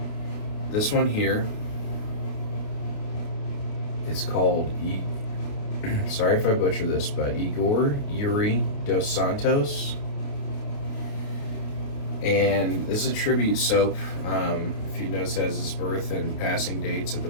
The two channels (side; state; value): right; late; 28 ms